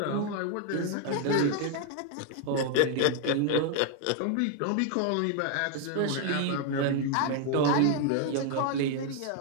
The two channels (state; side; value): different; both; correlation 0.00